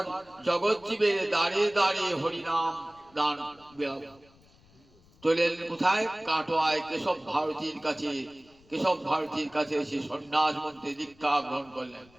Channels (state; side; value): noise; left; rumble, 29 dB below the sound